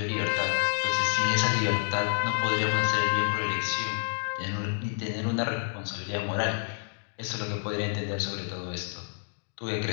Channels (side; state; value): right; silent; digital silence